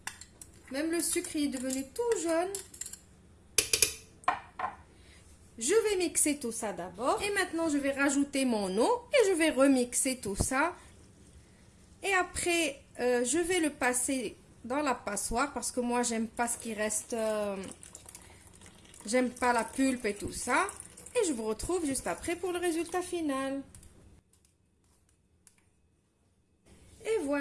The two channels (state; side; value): identical; both; correlation 1.00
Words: Même le sucre est devenu tout jaune. Je vais mixer tout ça d'abord. Et maintenant, je vais rajouter mon eau. Et je vais remixer tout ça. Et après, je vais le passer dans la passoire. Parce que moi, j'aime pas ce qui reste. J'aime pas la pulpe et tout ça. Et je vous retrouve juste après pour le résultat final. Et